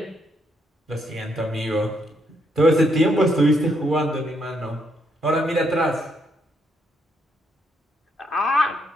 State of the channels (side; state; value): both; normal; correlation 0.75